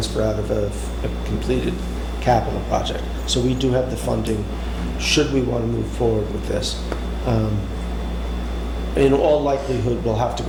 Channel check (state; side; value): identical; both; correlation 1.00